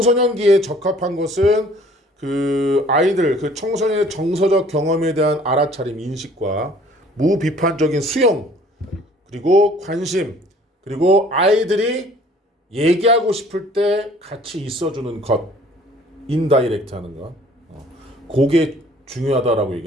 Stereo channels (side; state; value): both; normal; correlation 0.54